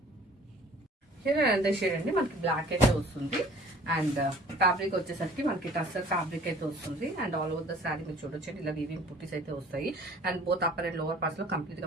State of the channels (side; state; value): both; normal; correlation 0.51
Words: అంతే షేడ్ అండి, మనకి బ్లాక్ అయితే వస్తుంది. అండ్ ఫ్యాబ్రిక్ వచ్చేసరికి మనకి టస్సర్ ఫ్యాబ్రిక్ అయితే వస్తుంది. And all over the saree మీరు చూడొచ్చు ఇలా వీవింగ్ బూటీస్ అయితే వస్తాయి. And both upper and lower parts లో కంప్లీట్